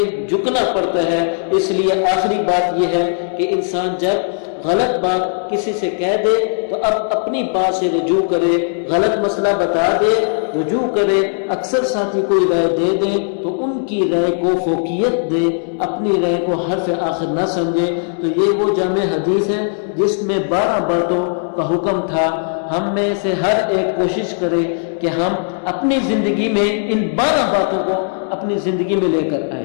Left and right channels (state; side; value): silent; right; 68 dB below the other